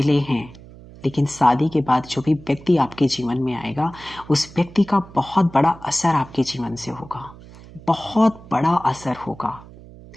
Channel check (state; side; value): noise; right; hum, 19 dB below the sound